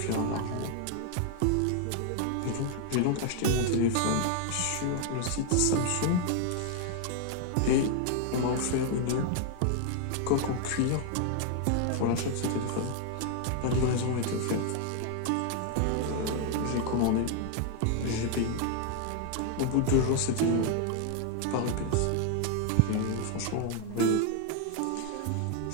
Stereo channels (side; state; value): both; different; correlation 0.01